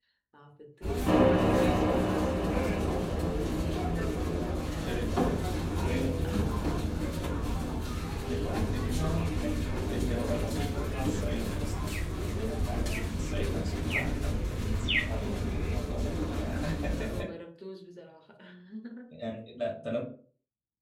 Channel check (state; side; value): identical; both; correlation 1.00